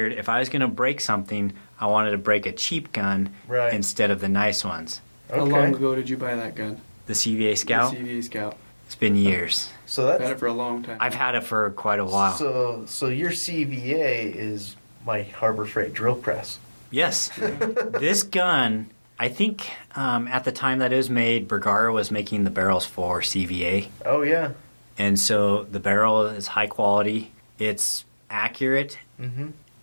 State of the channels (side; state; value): both; inverted; correlation -1.00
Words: if I was going to break something, I wanted to break a cheap gun instead of the nice ones. How long ago did you buy that gun? The CVA Scout? The CVA Scout. It's been years. So that's... I've had it for a long time. I've had it for quite a while. So your CVA is my Harbor Freight drill press. Yes. This gun, I think at the time that it was made, Bergara was making the barrels for CVA. Oh, yeah. And so the barrel is high quality. It's accurate. Mm-hmm.